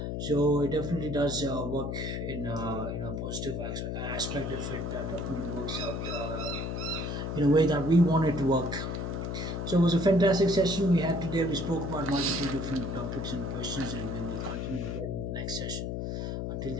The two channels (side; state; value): left; noise; hum, 3 dB below the sound